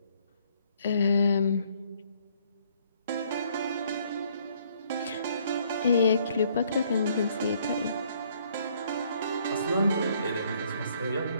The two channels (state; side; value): inverted; both; correlation -0.65